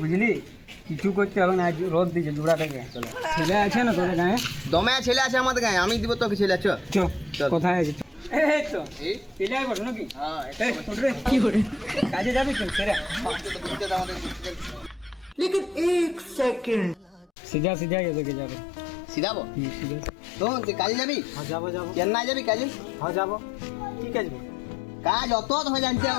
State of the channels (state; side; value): drops out; right; at 17.3 s